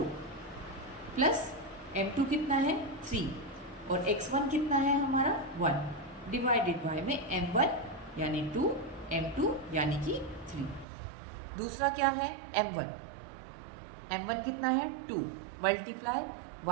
प्लस m2 कितना है 3 और x1 कितना है हमारा 1 डिवाइडेड बाय में m1 यानी 2, m2 यानी कि 3। दूसरा क्या है m1 कितना है 2 मल्टीप्लाई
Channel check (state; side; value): drops out; left; at 10.9 s